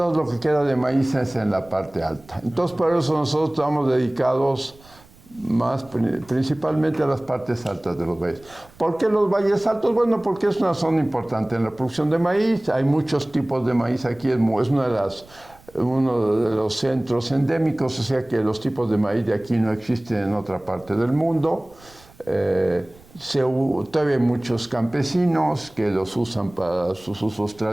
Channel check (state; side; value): noise; right; rumble, 25 dB below the sound